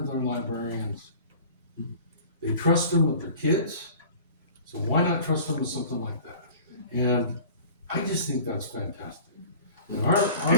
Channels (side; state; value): both; inverted; correlation -0.43